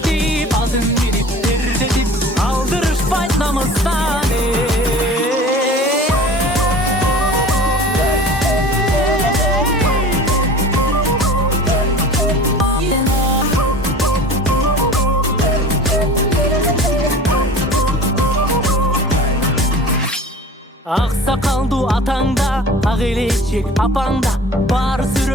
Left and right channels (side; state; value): both; normal; correlation 0.41